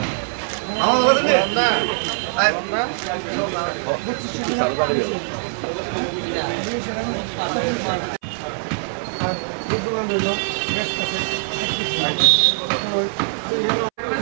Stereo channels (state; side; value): silent; left; 62 dB below the other